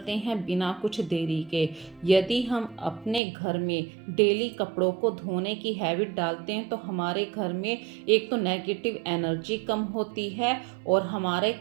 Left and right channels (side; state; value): left; drops out; at 3.2 s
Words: हैं बिना कुछ देरी के। यदि हम अपने घर में डेली कपड़ों को धोने की हैबिट डालते हैं तो हमारे घर में एक तो नेगेटिव एनर्जी कम होती है और हमारे